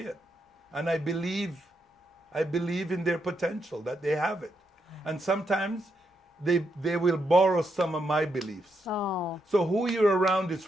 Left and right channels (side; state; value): both; normal; correlation 0.80